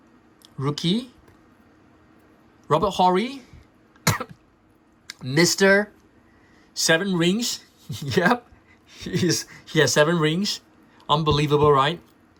Rookie. Robert Horry. Mr. 7 rings. Yep. He has 7 rings. Unbelievable, right?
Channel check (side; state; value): both; identical; correlation 1.00